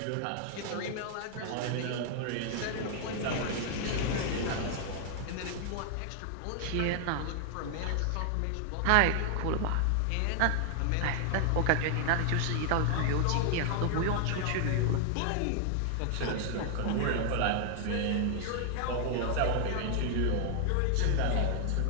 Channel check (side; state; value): both; different; correlation 0.00